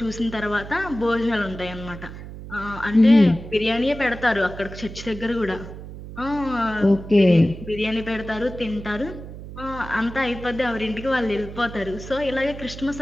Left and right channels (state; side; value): noise; right; hum, 12 dB below the sound